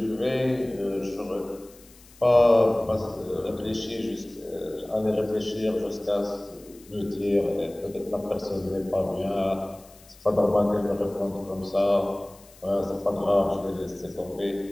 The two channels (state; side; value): noise; left; hiss, 25 dB below the sound